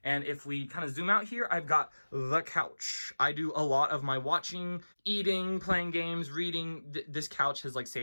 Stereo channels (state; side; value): inverted; both; correlation -1.00